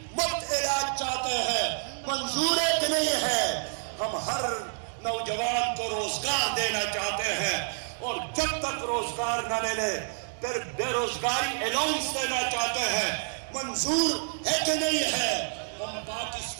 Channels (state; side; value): silent; left; digital silence